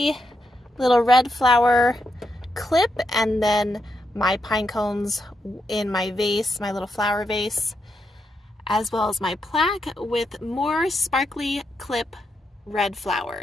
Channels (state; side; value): normal; both; correlation 0.83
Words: little red flower clip, and then my pine cones in my vase, my little flower vase, as well as my plaque with more sparkly clip red